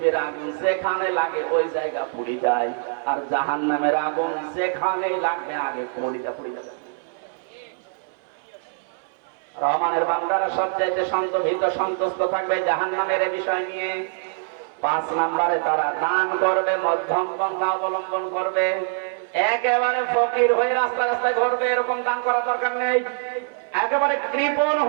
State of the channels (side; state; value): left; silent; digital silence